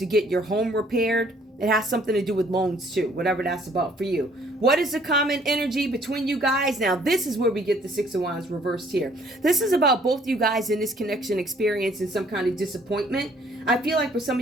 get your home repaired. It has something to do with loans too, whatever that's about for you. What is the common energy between you guys? Now, this is where we get the Six of Wands reversed here. This is about both you guys in this connection experiencing some kind of disappointment. I feel like for some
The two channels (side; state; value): both; normal; correlation 0.61